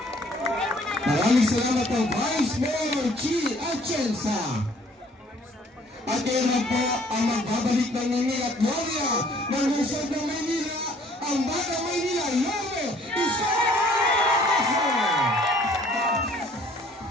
Maraming salamat po, Vice Mayor Chi Atienza. At ngayon po ang magbabalik ng Nini at Gloria ng lungsod ng Maynila, ang Batang Maynila, Yome Isko!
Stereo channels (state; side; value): normal; both; correlation 0.58